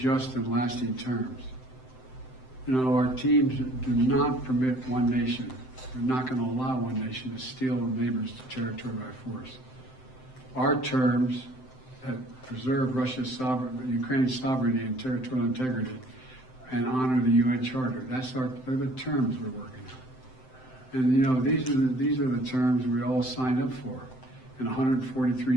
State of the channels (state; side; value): late; right; 7.8 ms